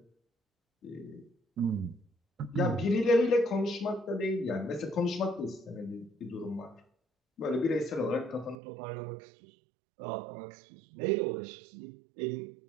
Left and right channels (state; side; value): drops out; left; at 8.6 s